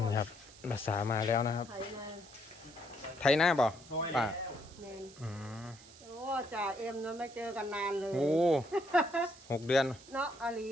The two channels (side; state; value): right; noise; hiss, 21 dB below the sound